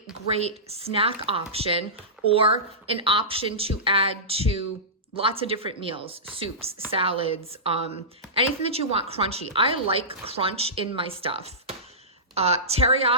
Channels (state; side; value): normal; both; correlation -0.19